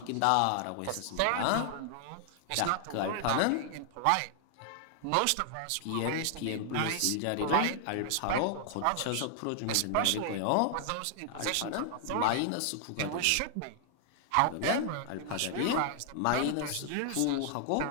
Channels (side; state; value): both; different; correlation 0.00